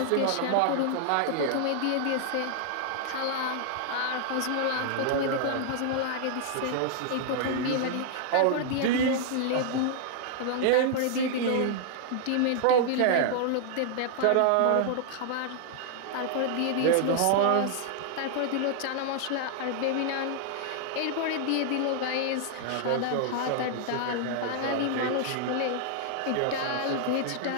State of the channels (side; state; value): both; different; correlation -0.01